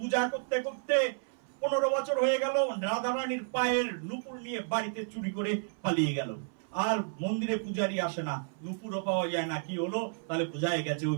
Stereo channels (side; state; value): left; silent; 57 dB below the other